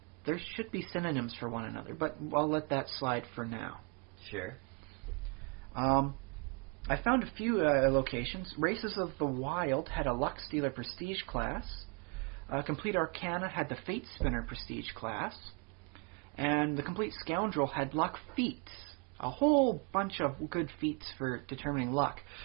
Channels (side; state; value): left; quieter; 34.1 dB